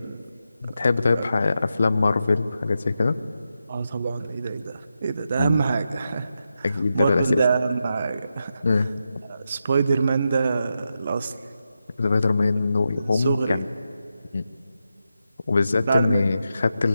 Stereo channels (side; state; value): both; inverted; correlation -0.88